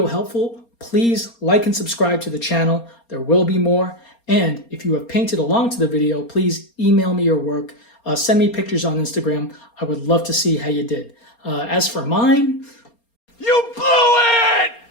helpful, please like and subscribe to the channel. There will be more. And if you have painted along to the video, please email me your work. Send me pictures on Instagram. I would love to see how you did. As for mine... You blew it!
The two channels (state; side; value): late; right; 4.3 ms